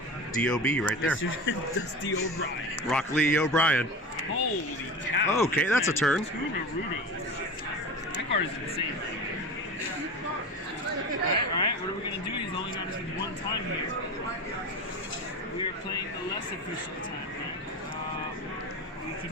DOB right there. Dusty O'Brien. Rock Lee O'Brien. Holy cow! Okay, that's a turn. 2 Naruto. That card is insane. All right. What are we gonna do? He's only got us with 1 time here. We are playing the less efficient time. We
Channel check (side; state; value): both; normal; correlation 0.30